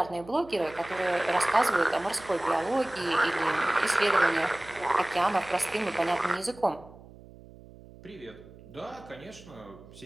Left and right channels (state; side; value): noise; right; hum, 20 dB below the sound